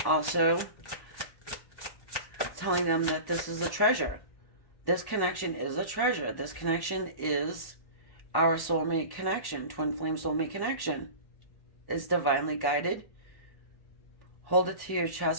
also telling them that this is a treasure. This connection is a treasure. This connection is our soulmate connection, twin flame soulmate connection. It's divinely guided. Hold it to your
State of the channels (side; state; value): right; late; 1.1 ms